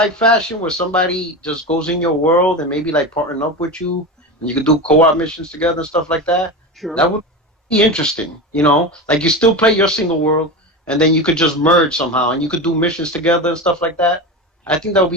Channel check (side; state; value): both; normal; correlation 0.23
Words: fashion where somebody just goes in your world and maybe like partner up with you and you could do co-op missions together and stuff like that. Sure. That would be interesting. Like you still play your single world and then you could just merge somehow and you could do missions together and stuff like that. I think that would